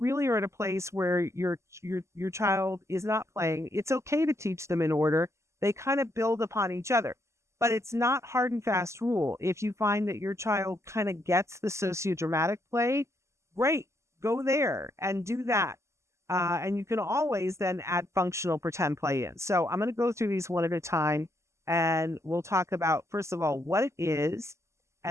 are at a place where your child is not playing, it's okay to teach them in order. They kind of build upon each other. But it's not hard and fast rule. If you find that your child kind of gets the sociodramatic play, great, go there and do that. And you can always then add functional pretend play in. So I'm going to go through these one at a time, and we'll talk about, first of all, what it is,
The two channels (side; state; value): left; late; 0.13 ms